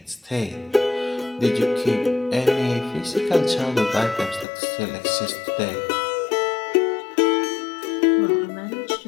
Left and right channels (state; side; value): drops out; right; at 4.5 s